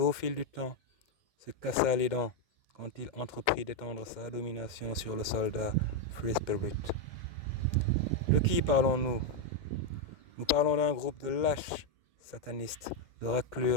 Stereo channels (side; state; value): right; late; 2.1 ms